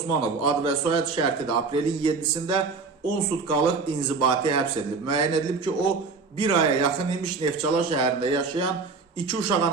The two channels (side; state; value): left; quieter; 4.5 dB